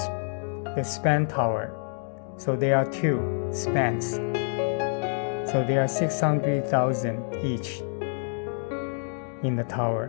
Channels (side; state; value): right; silent; digital silence